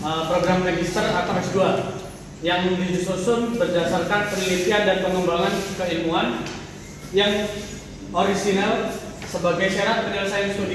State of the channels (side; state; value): both; identical; correlation 1.00